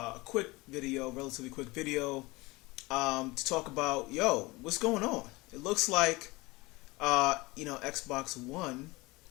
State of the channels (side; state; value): right; quieter; 22.7 dB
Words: quick video, relatively quick video, to talk about what's going on. It looks like Xbox One